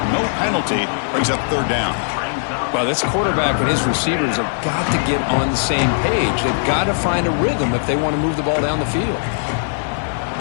No penalty. Brings up 3rd down. Well, this quarterback and his receivers have got to get on the same page. They've got to find a rhythm if they want to move the ball down the field.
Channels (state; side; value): silent; right; digital silence